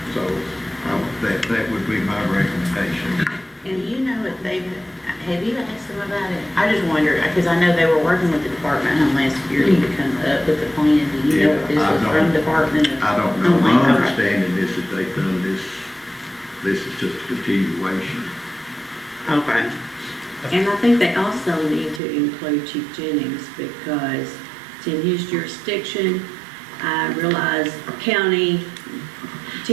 So that would be my recommendation. And you know if have you asked them about it? I just wonder, because I know they were working with the Department of Homeland Security to come up with the plan. Do you know if this was from Department of I don't know. My Homeland? understanding is that they've done this is just a continuation. Okay. And I think they also need to include Chief Jennings because it's in his jurisdiction. I realize county,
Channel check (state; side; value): drops out; left; at 22.0 s